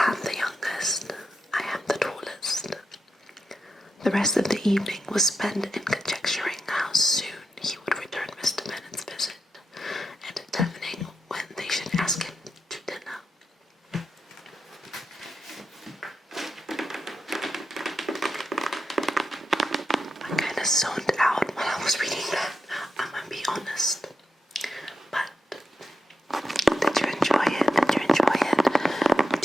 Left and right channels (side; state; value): both; normal; correlation 0.87